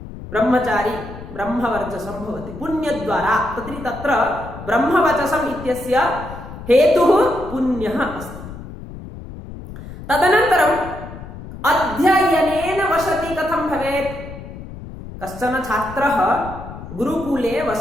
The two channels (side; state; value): left; noise; rumble, 13 dB below the sound